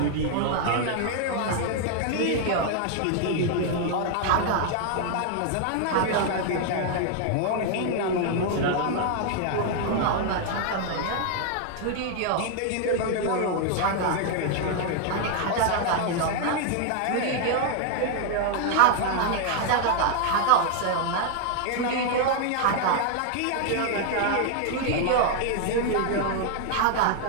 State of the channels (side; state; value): both; different; correlation 0.00